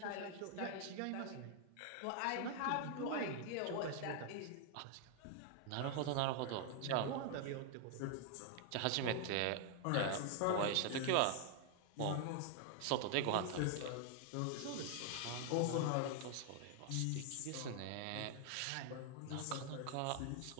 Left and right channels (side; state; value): both; different; correlation 0.00